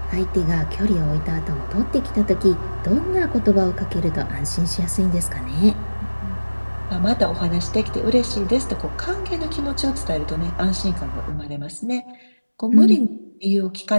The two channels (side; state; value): both; inverted; correlation -1.00